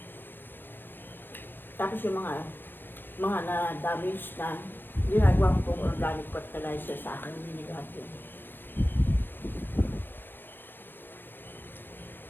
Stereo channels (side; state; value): right; late; 0.098 ms